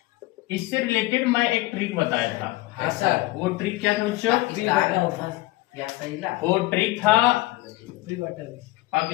इससे रिलेटेड मैं एक ट्रिक बताया था। हाँ सर। वो ट्रिक क्या था बच्चों? वो ट्रिक था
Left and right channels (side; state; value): right; quieter; 19.3 dB